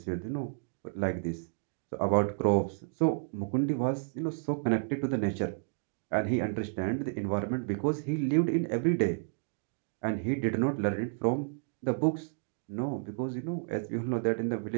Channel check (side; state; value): left; silent; digital silence